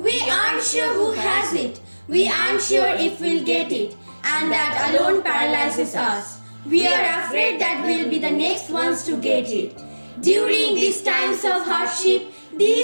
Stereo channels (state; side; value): inverted; both; correlation -1.00